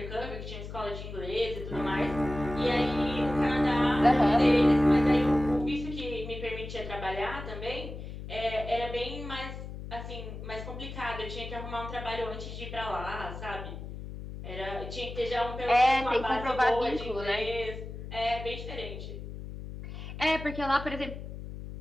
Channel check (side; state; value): left; noise; hum, 10 dB below the sound